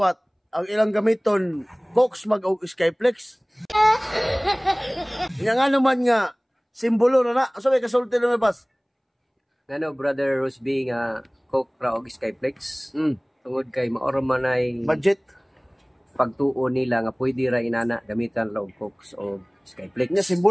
ang ilang gamiton Cox mag og Skyflex. Nga naman nga simbolo na sabi kasulti na pas. Ngano brother Rosby nga Coke ra og Skyflex. Tungod kay maoro man ay Budget pagtuo nila nga pwede ra inana gamitan ra og Coke o Skyflex. nya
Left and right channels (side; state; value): both; identical; correlation 1.00